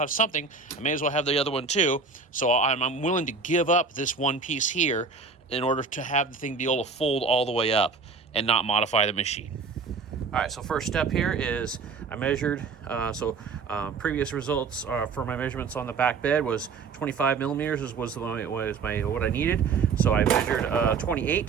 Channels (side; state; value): left; quieter; 4.9 dB